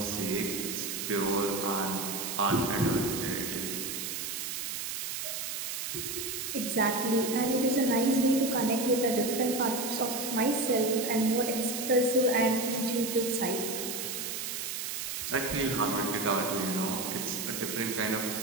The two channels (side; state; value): right; noise; hiss, 4 dB below the sound